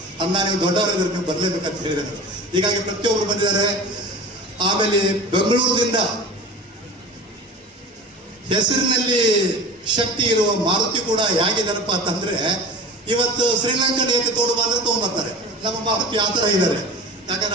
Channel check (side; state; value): both; normal; correlation 0.35